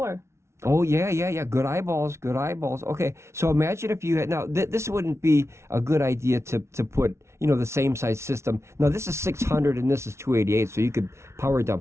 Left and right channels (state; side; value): late; left; 0.13 ms